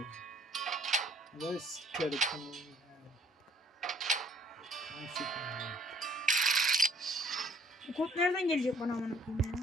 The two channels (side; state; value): both; normal; correlation 0.57